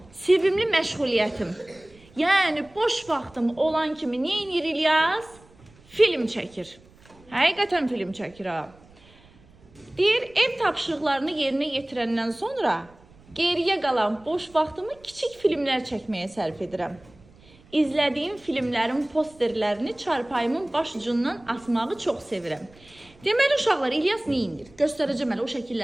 sevimli məşğuliyyətim. Yəni, boş vaxtım olan kimi nə edir İlyas? Film çəkir. Həqiqətən film çəkir ha. Deyir, ev tapşırıqlarını yerinə yetirəndən sonra geriyə qalan boş vaxtımı kiçik filmlər çəkməyə sərf edirəm. İzlədiyim filmlərin posterlərini çarpayımın baş ucundan asmağı çox sevirəm. Deməli, uşaqlar, İlyas nə edir? Göstərəcəm elə, o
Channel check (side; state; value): right; noise; rumble, 27 dB below the sound